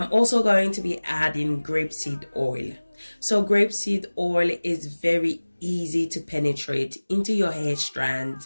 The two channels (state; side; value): inverted; both; correlation -1.00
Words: also going to be adding grapeseed oil. So grapeseed oil is very easy to penetrate into your hair